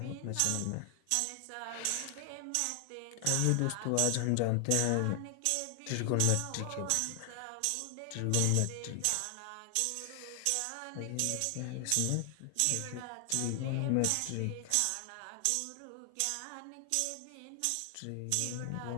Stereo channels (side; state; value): both; different; correlation 0.00